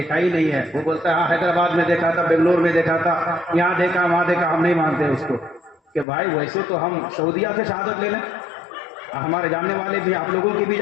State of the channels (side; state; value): right; drops out; at 6.1 s